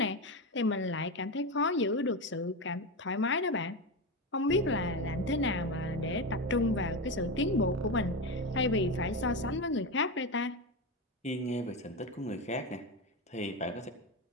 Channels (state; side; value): normal; both; correlation 0.16